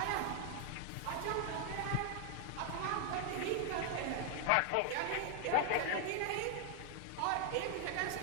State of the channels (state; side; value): different; both; correlation 0.00